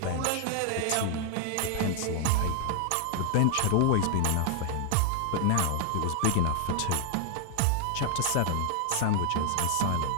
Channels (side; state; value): both; different; correlation 0.00